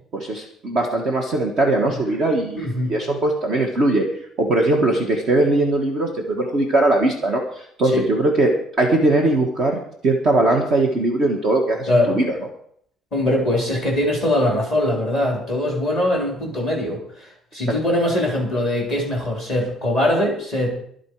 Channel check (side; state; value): both; normal; correlation 0.62